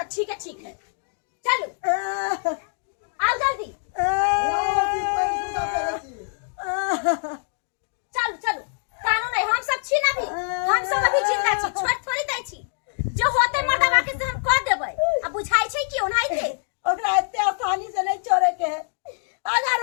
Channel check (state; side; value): silent; right; digital silence